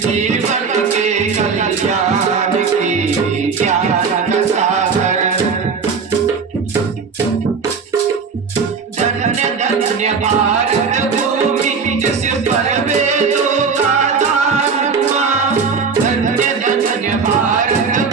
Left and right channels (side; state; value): left; quieter; 5.4 dB